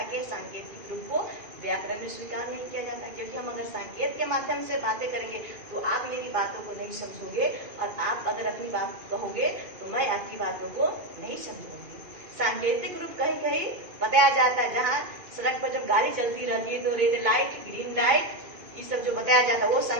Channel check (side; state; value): left; late; 2.4 ms